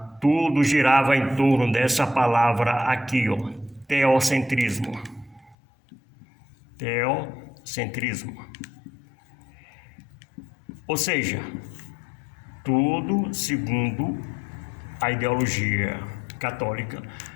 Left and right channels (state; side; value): drops out; right; at 5.6 s